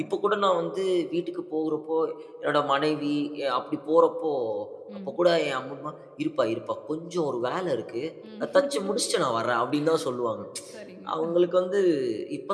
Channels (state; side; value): identical; both; correlation 1.00